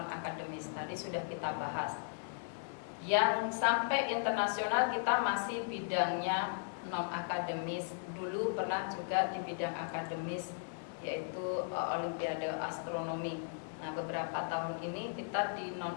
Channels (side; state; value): right; silent; digital silence